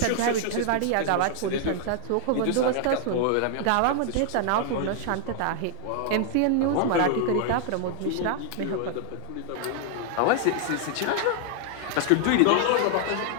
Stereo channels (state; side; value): different; both; correlation 0.00